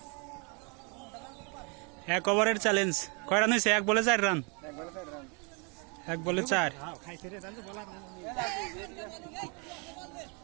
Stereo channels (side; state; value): left; quieter; 33.8 dB